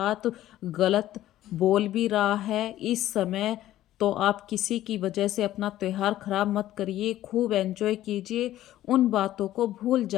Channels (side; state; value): right; quieter; 13.8 dB